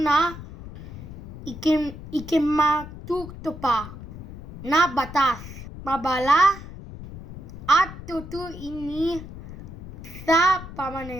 ikimatutupad na batas, mabala at tutuin sa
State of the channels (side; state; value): left; noise; rumble, 13 dB below the sound